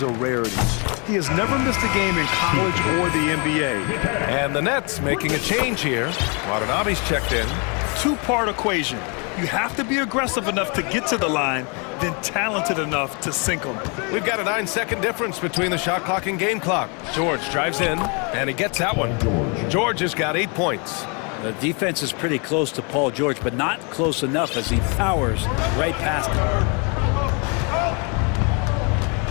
a rarity. He has never missed a game in college or the NBA. And the Nets making a change here. Watanabe's checked in. Two-part equation. You have to be aggressive enough to get to the line, then talented enough to sink them. We've got a 9-second difference between the shot clock and game clock. George drives in, and he gets that one. George has got 8 points. The defense is pretty close to Paul George, but not close enough as he powers right past him.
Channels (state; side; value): quieter; right; 34.5 dB